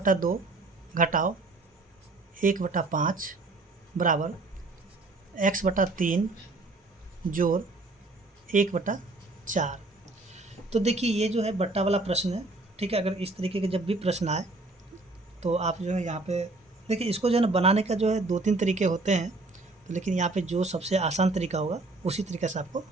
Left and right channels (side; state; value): left; quieter; 3.1 dB